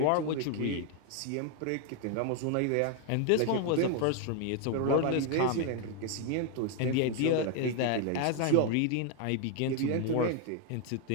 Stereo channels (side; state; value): both; different; correlation 0.00